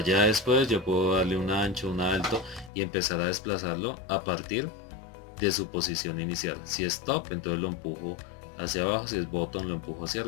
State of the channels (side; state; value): right; drops out; at 2.7 s